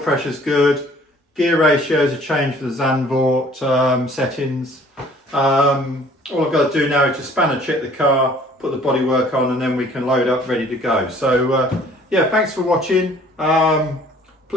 good. Gear ratios are changed for the Zandvoort settings. All I've got to do now is just spanner check the car, put the bodywork on, and then we can load up ready to go. So yeah, thanks for watching.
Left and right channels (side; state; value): both; normal; correlation 0.55